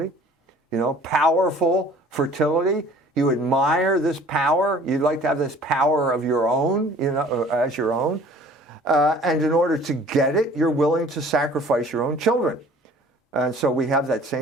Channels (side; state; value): both; normal; correlation 0.51